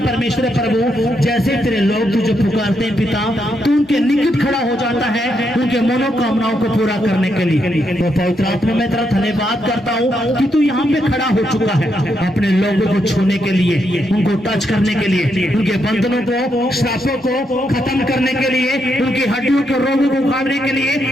प्रभु, जैसे तेरे लोग तुझे पुकारते हैं पिता, तू उनके निकट खड़ा हो जाता है उनके मनोकामनाओं को पूरा करने के लिए। तो पवित्र आत्मा मैं तेरा धन्यवाद करता हूँ कि तू यहाँ पे खड़ा हो चुका है अपने लोगों को छूने के लिए, उनको टच करने के लिए, उनके बंधनों को, श्रापों को खत्म करने के लिए, उनकी हड्डियों के रोगों को उखाड़ने के लिए।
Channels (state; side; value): normal; both; correlation 0.79